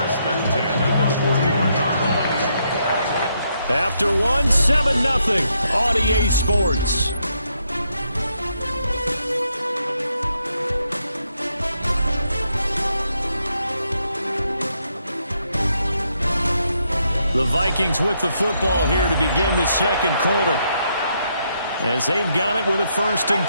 and 10 at the 41-yard line. After 7-0 on EA Sports. The Vikings with the football here to begin the second quarter, as they've got it with a first and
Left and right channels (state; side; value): inverted; both; correlation -0.77